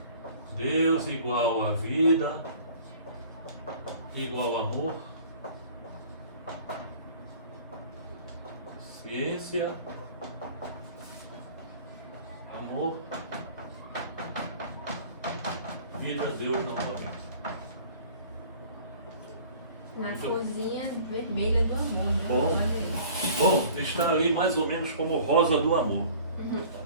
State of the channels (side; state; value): both; inverted; correlation -0.48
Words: Deus igual a vida, igual amor, ciência, amor, vida, Deus novamente. Na cozinha vermelha do amor, né? Bom, está ali mais ou menos como rosa do amor,